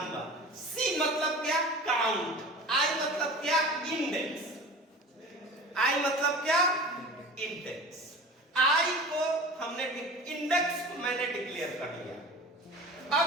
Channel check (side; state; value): both; normal; correlation 0.37